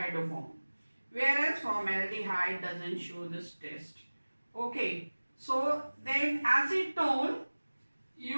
Whereas formaldehyde doesn't show this test. Okay, so then acetone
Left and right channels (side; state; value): both; inverted; correlation -1.00